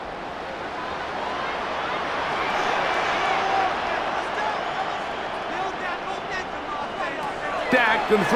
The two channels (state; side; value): identical; both; correlation 1.00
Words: Dak going to